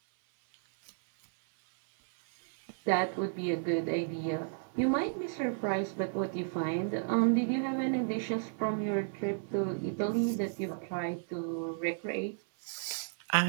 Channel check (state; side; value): silent; left; 56 dB below the other